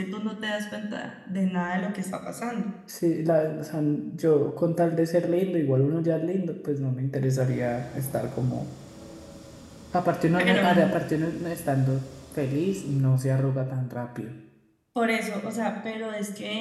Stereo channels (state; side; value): identical; both; correlation 1.00